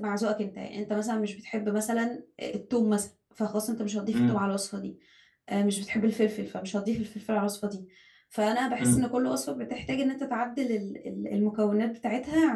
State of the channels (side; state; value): both; identical; correlation 1.00